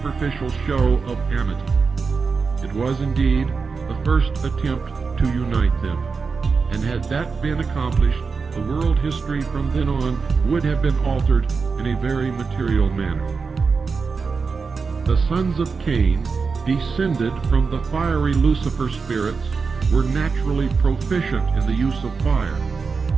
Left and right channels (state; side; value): quieter; left; 4.9 dB